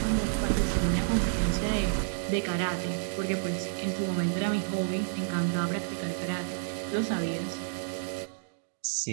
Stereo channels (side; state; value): left; silent; digital silence